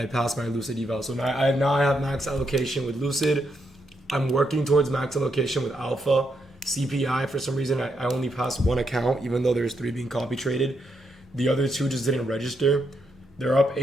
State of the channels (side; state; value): both; normal; correlation 0.79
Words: passed my Lucid eval. So now I have max allocation with Lucid. I'm working towards max allocation with Alpha. CPI, for some reason, I only passed one account, even though there's 3 being copy traded. The other 2 just didn't register. They're up